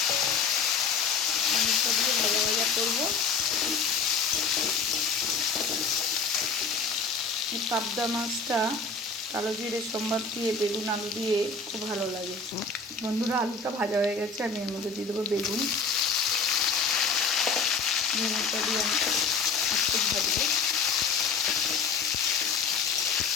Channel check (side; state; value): right; quieter; 4.8 dB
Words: আলুটা দিয়ে ভাজা ভাজা করবো। এই পাবদা মাছটা কালো জিরে সম্বার দিয়ে বেগুন আলু দিয়ে খুব ভালো লাগে। বন্ধুরা আলুটা ভাজা হয়ে গেছে, আমি এর মধ্যে দিয়ে দেবো বেগুন। বেগুনটা দিয়ে আমি একটু ভাজবো।